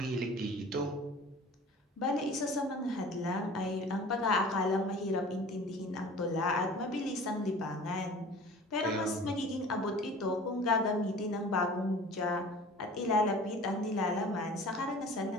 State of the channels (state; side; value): normal; both; correlation 0.43